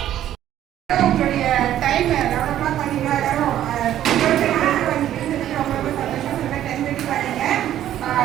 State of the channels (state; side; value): quieter; left; 11.9 dB